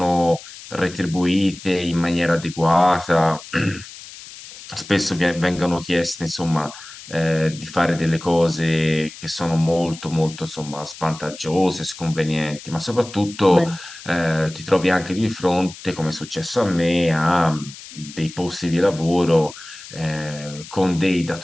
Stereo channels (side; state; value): left; noise; hiss, 16 dB below the sound